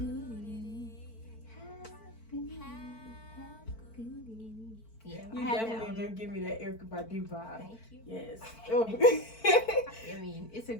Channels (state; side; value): late; right; 4.5 ms